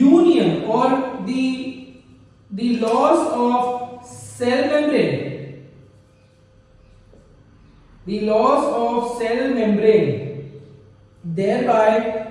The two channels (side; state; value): both; identical; correlation 1.00